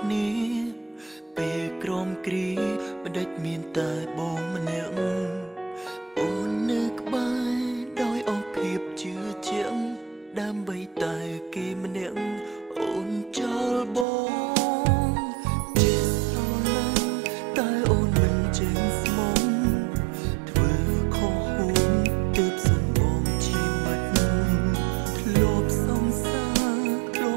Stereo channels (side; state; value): left; drops out; at 14.1 s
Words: ្នាពេលក្រមគ្រីមិនដេចមានតែបងម្នាក់អូននៅក្បែរដោយអស់ភាពជឿជាក់ដើម្បីតែគេម្នាក់អូនចោលបងជាស្រឡាញ់តែអូនមិនចេញស្មងធ្វើខុសហួងទើបសុំបងជាមិត្តធ្លាប់សង្សារធ្លា